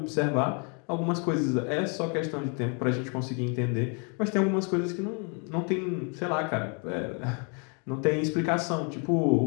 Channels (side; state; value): right; quieter; 37.4 dB